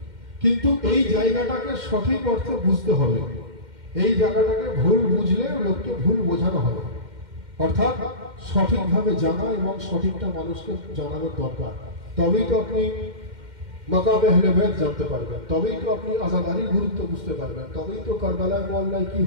কিন্তু এই জায়গাটাকে সঠিক অর্থে বুঝতে হবে। এই জায়গাটাকে ভুল বুঝলে লোককে ভুল বোঝানো হবে, অর্থাৎ সঠিকভাবে জানা এবং সঠিকটা মানুষকে জানানোর দরকার। তবেই তো আপনি মাকামে আহলে বাইত জানতে পারবেন, তবেই তো আপনি আযাদারির গুরুত্ব বুঝতে পারবেন, তবেই তো কারবালায় মহল্লায় কি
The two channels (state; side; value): late; left; 2.1 ms